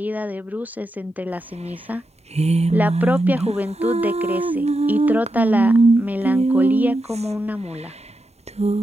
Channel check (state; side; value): normal; both; correlation 0.87